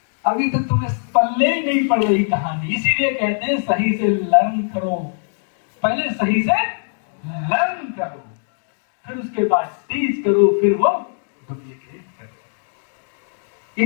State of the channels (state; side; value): silent; right; digital silence